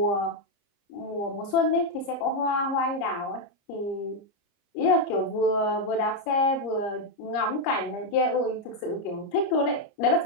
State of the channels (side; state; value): right; late; 30 ms